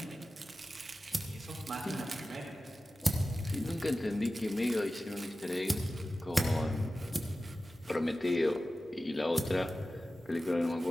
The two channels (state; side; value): normal; both; correlation 0.95